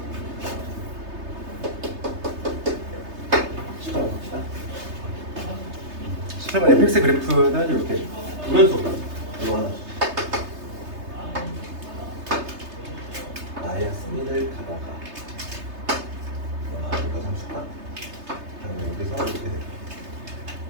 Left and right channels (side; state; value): left; late; 3.3 ms